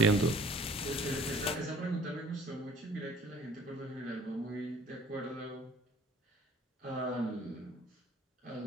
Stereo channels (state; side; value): normal; both; correlation 0.52